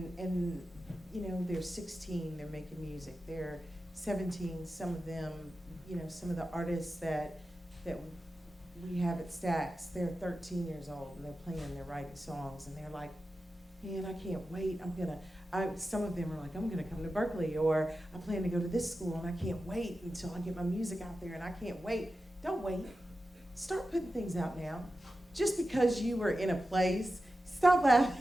you know, they're 16, they're making music. They're 17, some of them, you know, some of the artists that we have at Stax, they're 13 years old, and they're playing, they're writing songs, and they're like, man, I can't wait. Some of them are like, I'm gonna come to Berklee, or I plan to go to this school, and I can't wait until I get my music out there, and I can't wait. Don't wait. Start putting things out now. Just because you were in a place, stop laughing.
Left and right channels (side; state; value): both; normal; correlation 0.92